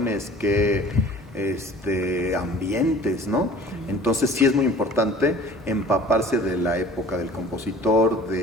qué ambientes, ¿no? Entonces sí es muy importante empaparse de la época del compositor,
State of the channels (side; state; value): both; normal; correlation 0.47